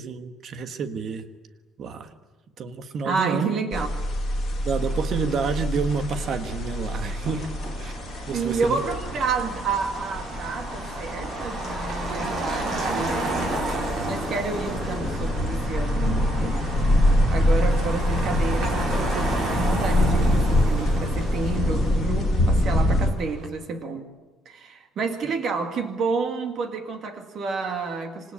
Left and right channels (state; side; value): normal; both; correlation 0.72